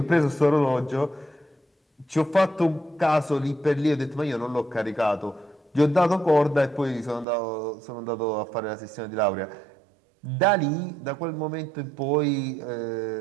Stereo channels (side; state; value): left; drops out; at 7.2 s